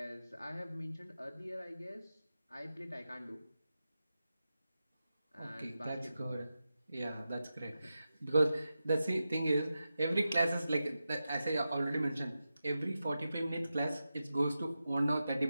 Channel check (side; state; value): both; inverted; correlation -0.91